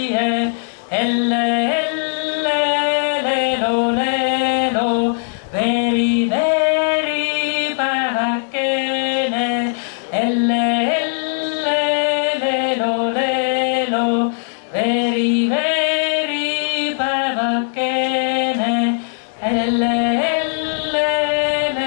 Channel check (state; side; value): silent; right; 63 dB below the other